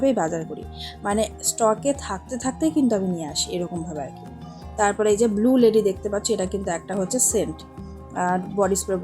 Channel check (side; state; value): both; identical; correlation 1.00